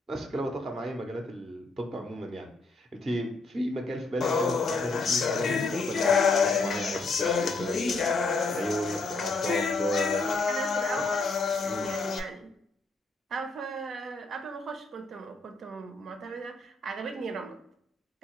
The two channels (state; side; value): quieter; right; 3.4 dB